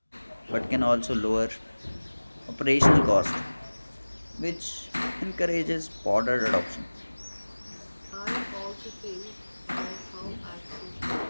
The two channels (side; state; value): both; inverted; correlation -1.00